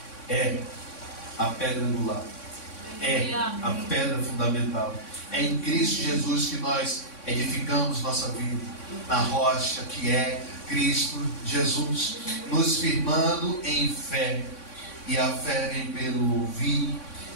é a pedra angular, é a pedra fundamental. É em Cristo Jesus que nós edificamos nossa vida, na rocha que é Cristo Jesus, nos firmando em fé. E a fé vem pelo ouvir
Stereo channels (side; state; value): right; late; 3.6 ms